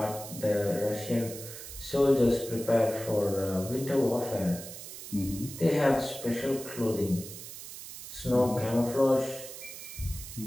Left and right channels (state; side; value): noise; right; hiss, 12 dB below the sound